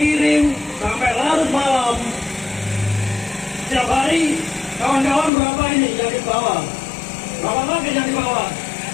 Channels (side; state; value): right; drops out; at 5.3 s